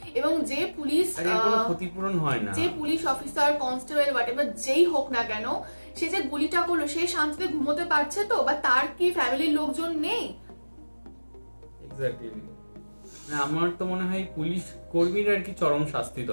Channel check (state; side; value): inverted; both; correlation -1.00